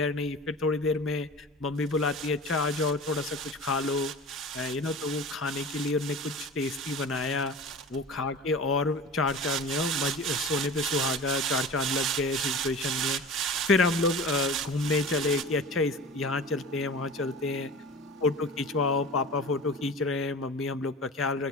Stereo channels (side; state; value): both; normal; correlation 0.35